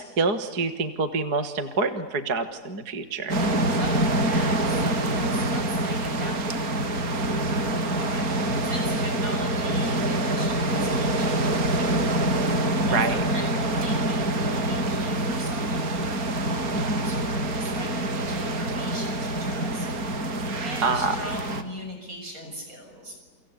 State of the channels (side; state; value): left; late; 4.4 ms